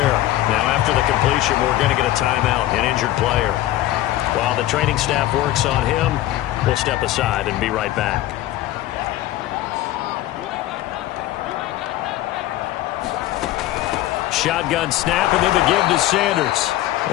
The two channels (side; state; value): right; quieter; 14.9 dB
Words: Now after the completion, we're going to get a timeout, an injured player. While the training staff works on him, we'll step aside and be right back. Shotgun snap, and then the give to Sanders.